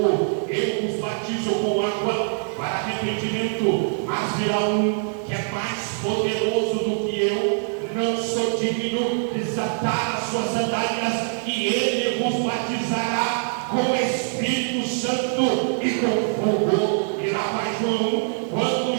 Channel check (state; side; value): silent; left; 63 dB below the other